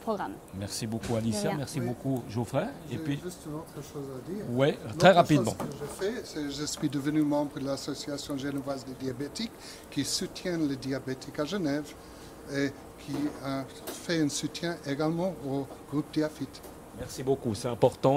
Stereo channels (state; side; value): identical; both; correlation 1.00